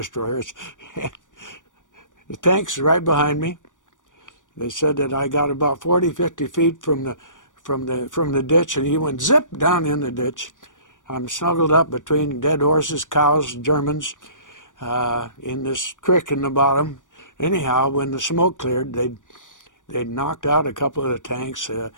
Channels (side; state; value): right; late; 0.87 ms